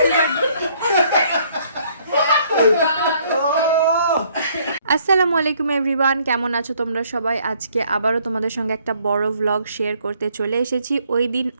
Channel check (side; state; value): both; inverted; correlation -0.64